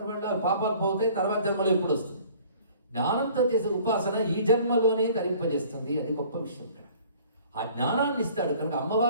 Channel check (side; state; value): both; inverted; correlation -0.53